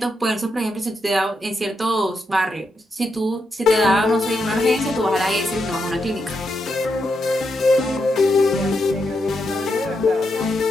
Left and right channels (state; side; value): normal; both; correlation 0.83